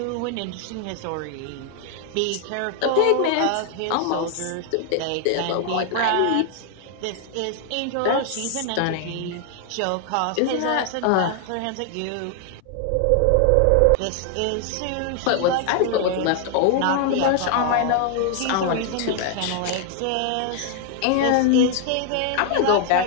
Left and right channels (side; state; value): both; different; correlation 0.00